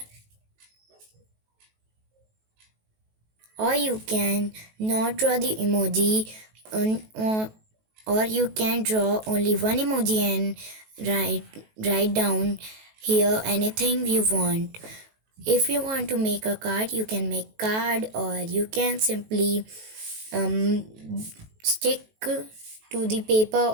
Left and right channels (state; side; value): late; left; 18 ms